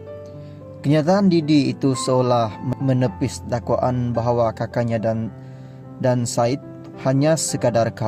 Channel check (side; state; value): both; identical; correlation 1.00